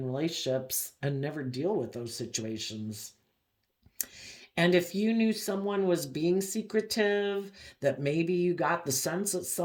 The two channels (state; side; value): identical; both; correlation 1.00